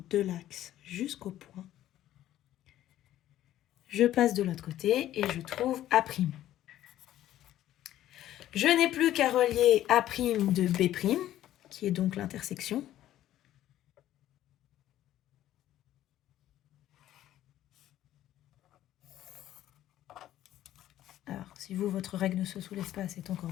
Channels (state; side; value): quieter; right; 13.0 dB